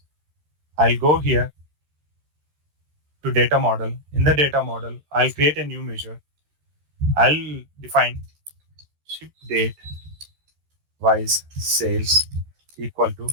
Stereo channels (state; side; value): late; left; 13 ms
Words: I'll go here to data model. In the data model, I'll create a new measure. I'll define ship date wise sales equal to,